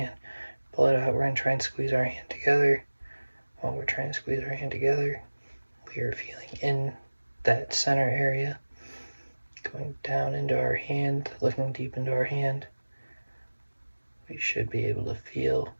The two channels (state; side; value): inverted; both; correlation -1.00